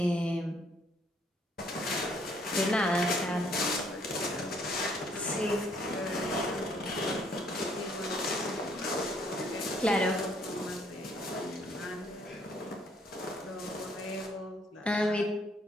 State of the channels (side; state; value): both; normal; correlation 0.66